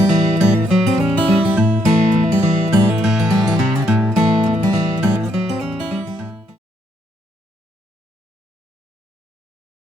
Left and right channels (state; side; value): normal; both; correlation 0.74